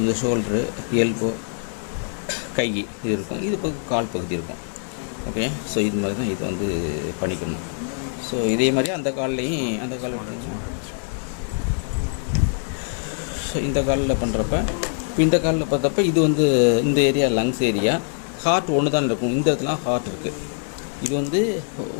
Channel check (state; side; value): silent; right; 63 dB below the other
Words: இந்த ஷோல்டரு, எல்போ, கை இது இருக்கும், இது பகுதி கால் பகுதி இருக்கும். ஓகே, ஸோ இது மாதிரி தான் இது வந்து பண்ணிக்கணும். ஸோ இதே மாதிரி அந்த கால்லையும் அந்த கால் ஸோ இந்த காலில் பண்ணுறப்ப இப்போ இந்த காலில் பார்த்தப்ப இது வந்து இந்த ஏரியா லங்ஸ் ஏரியா, ஹார்ட் ஒன்று தான் இருக்கும். இந்த இடத்துல ஹார்ட் இருக்குது. இது வந்து